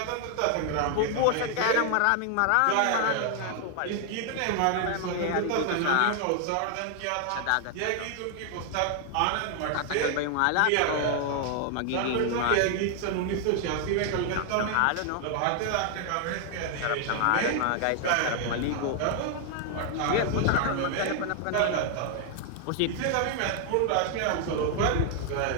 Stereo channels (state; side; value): different; both; correlation 0.00